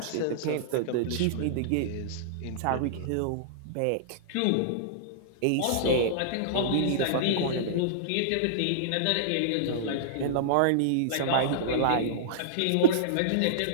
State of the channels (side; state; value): both; different; correlation -0.02